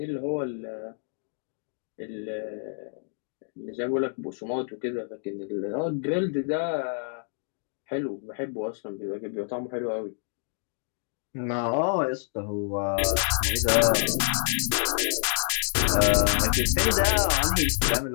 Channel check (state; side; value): silent; right; digital silence